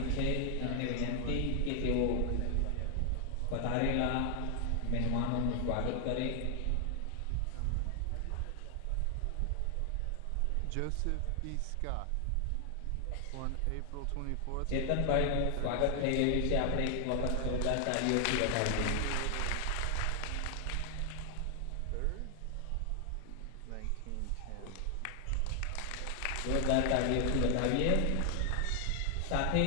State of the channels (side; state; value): both; different; correlation 0.00